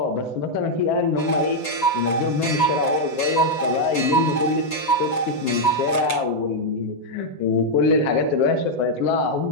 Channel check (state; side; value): late; right; 8.0 ms